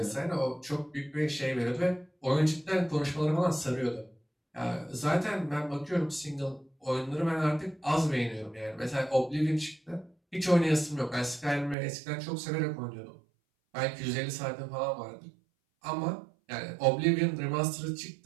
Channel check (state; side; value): drops out; left; at 11.8 s